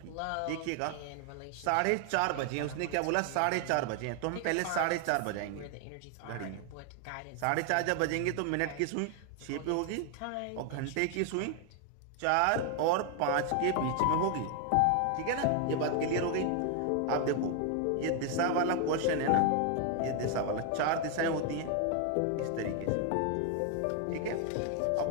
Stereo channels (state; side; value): different; both; correlation 0.00